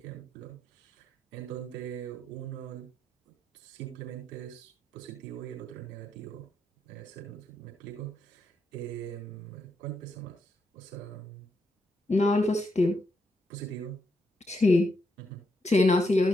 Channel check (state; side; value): normal; both; correlation 0.81